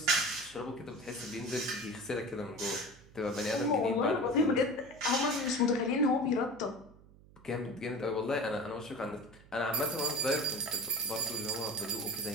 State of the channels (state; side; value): noise; right; hum, 23 dB below the sound